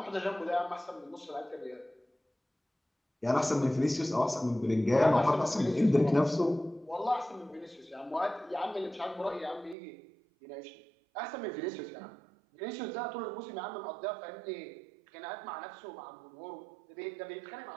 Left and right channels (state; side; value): drops out; left; at 9.8 s